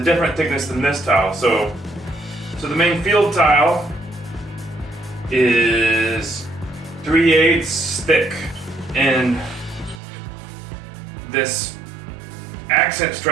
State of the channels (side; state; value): left; drops out; at 10.0 s